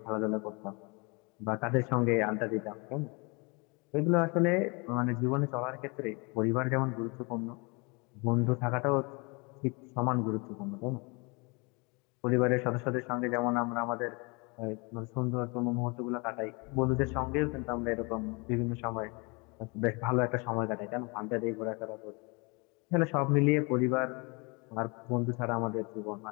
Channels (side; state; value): right; quieter; 29.8 dB